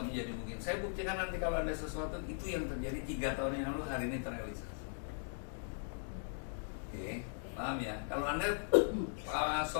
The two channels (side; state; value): right; silent; digital silence